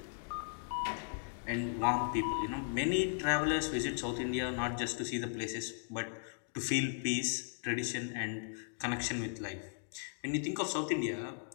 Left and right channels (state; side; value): silent; right; digital silence